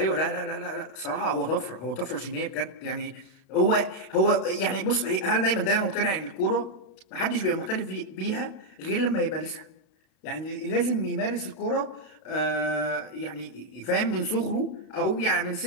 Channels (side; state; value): right; late; 32 ms